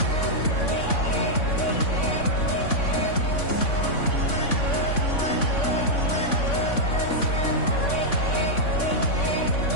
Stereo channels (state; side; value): late; right; 3.5 ms